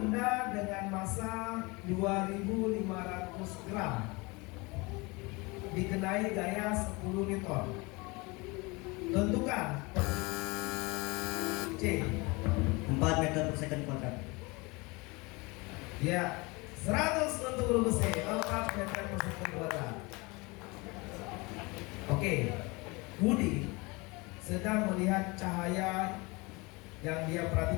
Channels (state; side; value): quieter; right; 25.8 dB